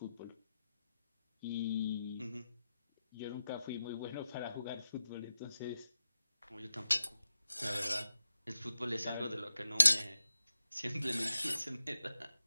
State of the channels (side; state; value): both; inverted; correlation -0.92